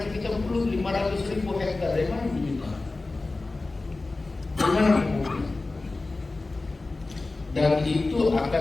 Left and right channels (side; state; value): right; quieter; 3.3 dB